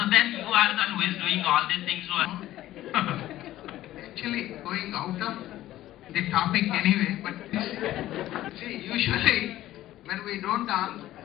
then you are the one who is doing all these things. Actually, going out of the topic anyway, but see, usually when we don't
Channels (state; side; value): quieter; right; 14.5 dB